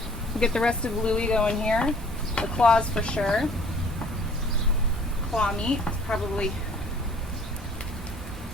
we'll get the rest of Louie going here. The claws for sure. Claw meat, probably.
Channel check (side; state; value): both; normal; correlation 0.54